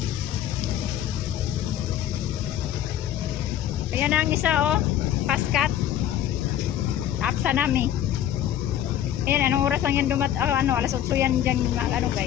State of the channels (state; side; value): quieter; right; 11.0 dB